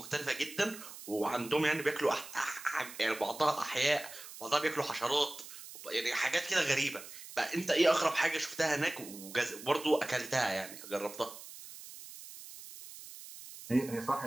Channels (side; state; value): right; noise; hiss, 14 dB below the sound